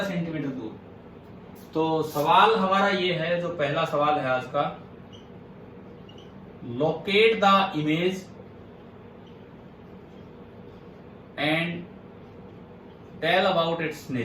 सेंटीमीटर दूर। तो सवाल हमारा ये है, जो पहला सवाल है आज का, locate the image and tell about its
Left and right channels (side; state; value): both; identical; correlation 1.00